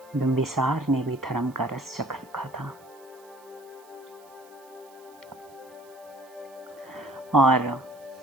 बिंबिसार ने भी धर्म का रस चख रखा था और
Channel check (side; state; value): right; noise; hiss, 27 dB below the sound